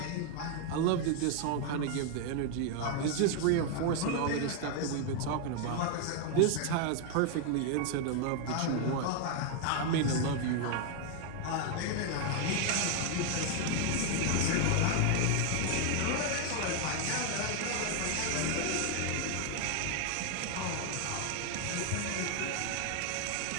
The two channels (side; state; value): both; different; correlation 0.00